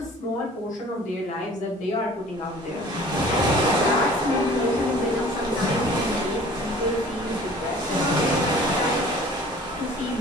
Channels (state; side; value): normal; both; correlation 0.48